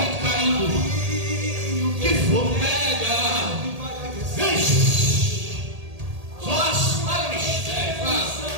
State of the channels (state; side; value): late; left; 1.8 ms